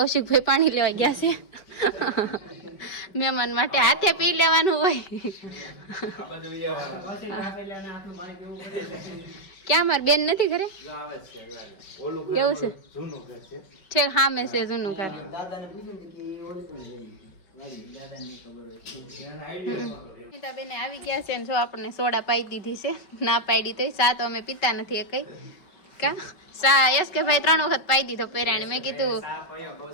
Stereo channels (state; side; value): late; right; 5.3 ms